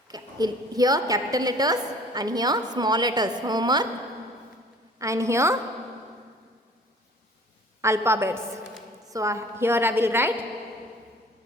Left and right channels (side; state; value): both; normal; correlation 0.49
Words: here capital letters and here small letters homework, and here alphabets. So here I will write